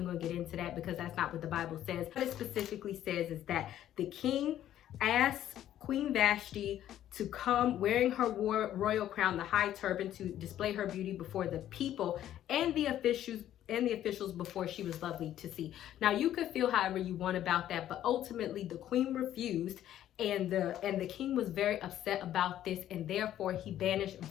going to get into that because that's not what the Bible says. What it specifically says is that the king asked Queen Vashti to come wearing her royal crown, the high turban, to display her beauty before the people and the officials before she was lovely to see. Now, you could feel however you want about that, but ultimately the queen refused, and the king was very upset about this, and therefore he banished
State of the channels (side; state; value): right; quieter; 11.9 dB